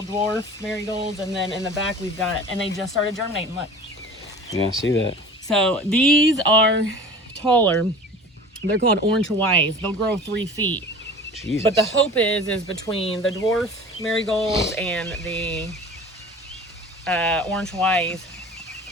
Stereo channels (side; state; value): both; normal; correlation 0.40